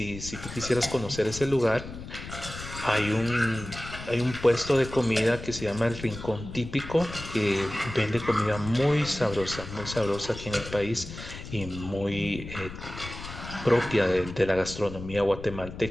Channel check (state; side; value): noise; left; rumble, 11 dB below the sound